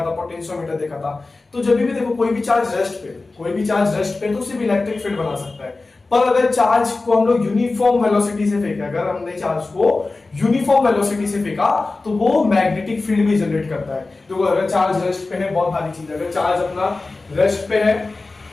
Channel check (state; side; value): quieter; right; 3.5 dB